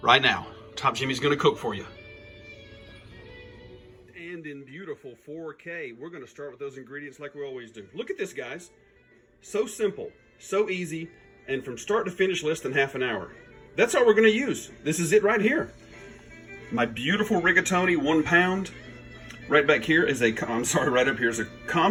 right now. Top Jimmy's gonna cook for you. And in beautiful 4K, we're gonna start with those ingredients like we always do. Look at this, guys. So simple, so easy, and from start to finish, less than half an hour. That's all we're gonna use. This is it right here. My beautiful rigatoni, 1 pound. Right back here is right up here is a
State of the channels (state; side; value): identical; both; correlation 1.00